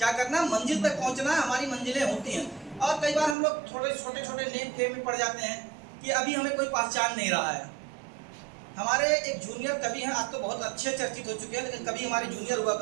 करना है? मंजिल तक पहुंचना है। हमारी मंजिलें होती हैं, और कई बार हम लोग थोड़े छोटे छोटे नेम खेम में पड़ जाते हैं कि अभी हमें कोई पहचान नहीं रहा है। हमारे एक जूनियर कवि हैं, आज तो बहुत अच्छे चर्चित हो चुके हैं, लेकिन कभी हमारे जूनियर हुआ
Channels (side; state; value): left; drops out; at 3.4 s